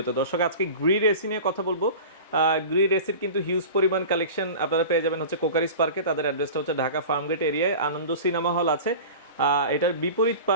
দর্শক, আজকে গ্রি এসি নিয়ে কথা বলবো। গ্রি এসির কিন্তু হিউজ পরিমাণ কালেকশন আপনারা পেয়ে যাবেন হচ্ছে কোকারিস পার্কে। তাদের অ্যাড্রেসটা হচ্ছে ঢাকা ফার্মগেট এরিয়ায়, আনন্দ সিনেমা হল আছে। এটার বিপরীত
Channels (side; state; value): both; inverted; correlation -0.35